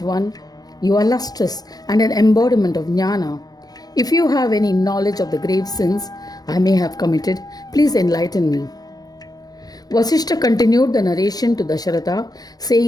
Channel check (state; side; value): late; right; 0.19 ms